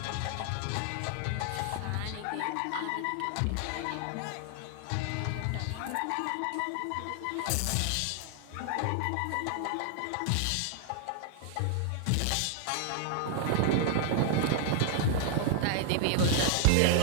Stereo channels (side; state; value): both; different; correlation 0.00